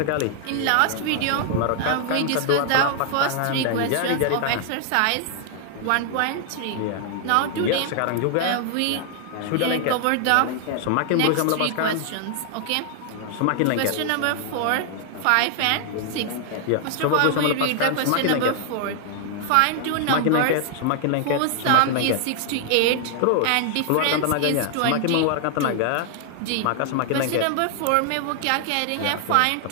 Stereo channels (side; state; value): both; different; correlation 0.00